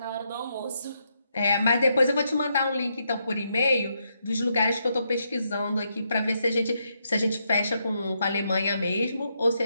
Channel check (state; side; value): inverted; both; correlation -0.79